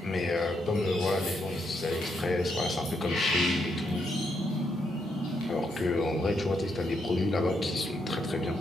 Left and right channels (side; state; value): both; normal; correlation 0.78